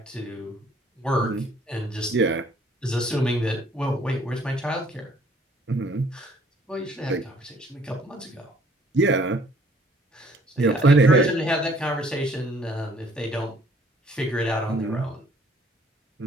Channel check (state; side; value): normal; both; correlation 0.59